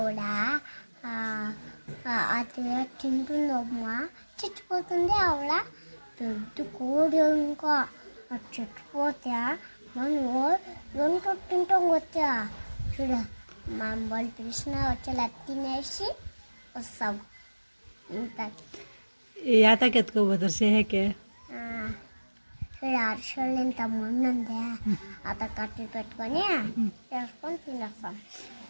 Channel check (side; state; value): both; inverted; correlation -1.00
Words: అది తింటుందమ్మా చచ్చిపోతుంది ఆవిడ పెద్ద కోడి ఇంకా అది చచ్చిపోతే మనం రెండు తింటాం వచ్చా చూడ మనం వాళ్ళు పిలిచిన వచ్చేలా తినేసి వస్తాం ఇంత యాతకి ఎత్తుకోపోతారు సేహకే చూడ అరసలు ఇంత ముందుందే అత కట్టి పెట్టుకొని చేసుకొని తినేస్తాం